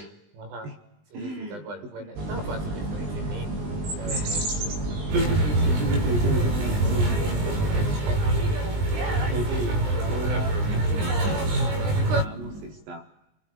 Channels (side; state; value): left; late; 20 ms